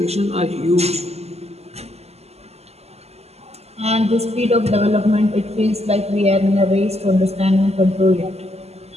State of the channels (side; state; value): left; late; 0.30 ms